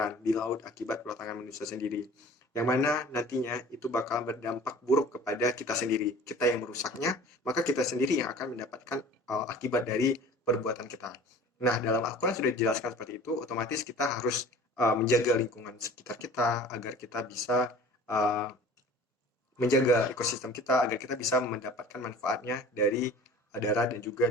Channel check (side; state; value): both; normal; correlation 0.44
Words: di laut akibat ulah tangan manusia sendiri. Yang mana nantinya itu bakal berdampak buruk kepada kita sendiri. Kita yang merusaknya, maka kita sendiri yang akan mendapatkan akibat dari perbuatan kita. Nah, dalam Al-Quran sudah dijelaskan seperti itu, otomatis kita harus menjaga lingkungan sekitar kita agar kita bisa uh, menjaga ekosistem kita agar kita bisa mendapatkan manfaatnya dari darat dan juga